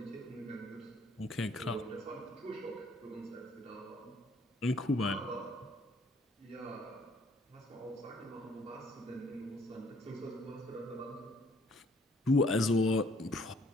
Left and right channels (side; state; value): both; normal; correlation 0.63